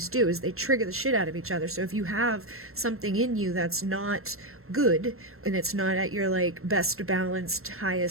do, is they trigger the shit out of each other. So if you have something in you that's not good, and it's not at your like best balanced,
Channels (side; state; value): left; late; 0.62 ms